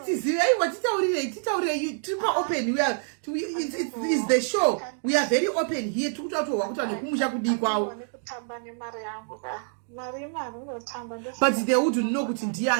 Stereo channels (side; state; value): left; silent; digital silence